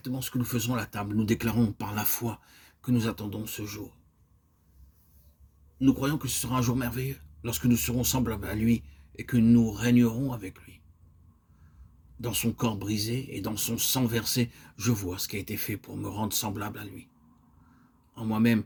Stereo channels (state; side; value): identical; both; correlation 1.00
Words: ce que nous faisons à la table. Nous déclarons par la foi que nous attendons ce jour. Nous croyons que ce sera un jour merveilleux, lorsque nous serons semblables à lui et que nous régnerons avec lui. Dans son corps brisé et dans son sang versé, je vois ce qui a été fait pour me rendre semblable à lui. En moi-même,